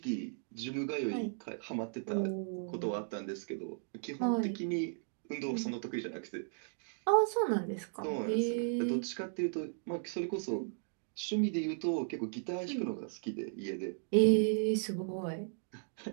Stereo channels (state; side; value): silent; left; digital silence